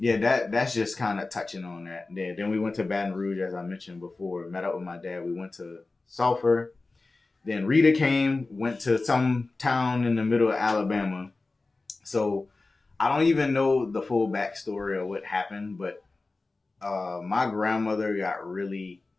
that's just kind of touching on that. Then we went to Baton Rouge, as I mentioned before. Met up with my dad. We went to Sulphur. Then Rita came, went to some town in the middle of Alabama. So I don't even know the full backstory of what happened, but my grandmother got really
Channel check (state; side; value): quieter; right; 3.5 dB